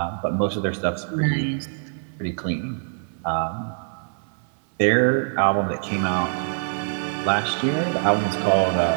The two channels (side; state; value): left; silent; 57 dB below the other